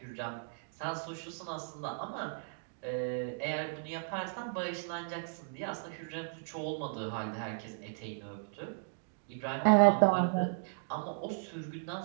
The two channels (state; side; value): silent; left; digital silence